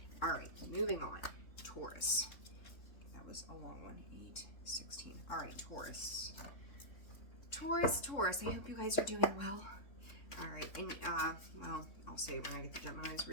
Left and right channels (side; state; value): right; late; 3.6 ms